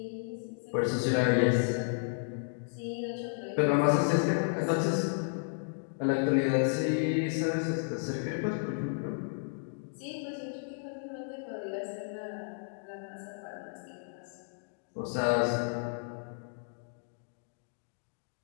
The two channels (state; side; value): silent; right; digital silence